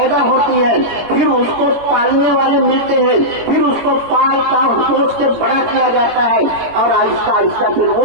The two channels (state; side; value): late; left; 18 ms